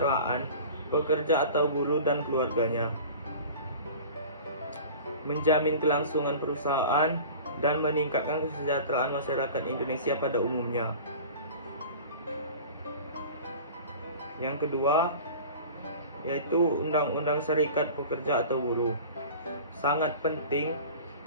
pekerja atau buruh dan keluarganya, menjamin kelangsungan perusahaan, dan meningkatkan kesejahteraan masyarakat Indonesia pada umumnya. Yang kedua, yaitu Undang-Undang Serikat Pekerja atau Buruh. Sangat penting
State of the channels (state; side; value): inverted; both; correlation -0.39